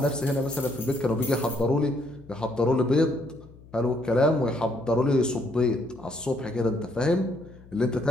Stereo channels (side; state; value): left; noise; hum, 22 dB below the sound